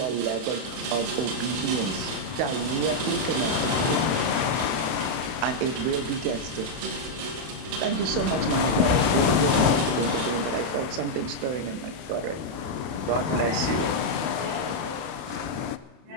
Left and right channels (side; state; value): left; late; 32 ms